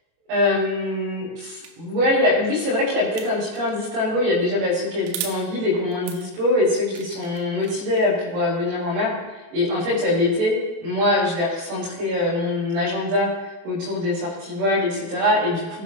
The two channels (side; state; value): left; late; 29 ms